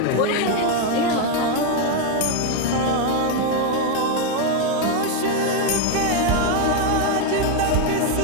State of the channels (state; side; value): different; both; correlation 0.01